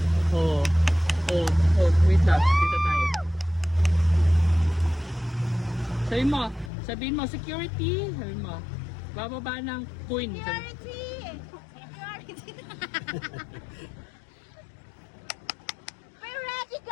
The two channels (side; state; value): right; drops out; at 6.7 s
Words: Oh, wait lang. Dito tayo. Sabihin mo, security. Sabihin mo, bababa ng queen. Security! We're ready,